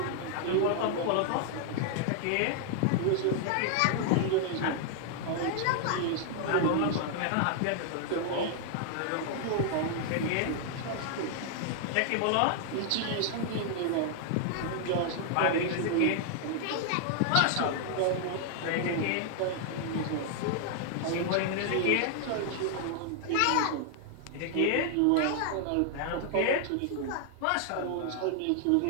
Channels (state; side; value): different; both; correlation -0.01